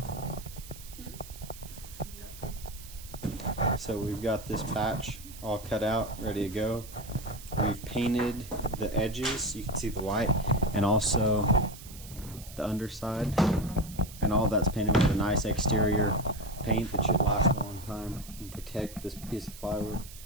So we've got this patch all cut out, ready to go. We've painted the edges, you can see the white, and also the underside. And all that's painted with a nice exterior paint that should last a long time and protect this piece of plywood.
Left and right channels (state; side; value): noise; right; hiss, 16 dB below the sound